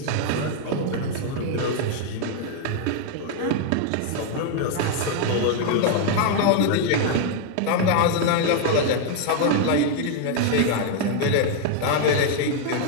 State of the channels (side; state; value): both; different; correlation 0.00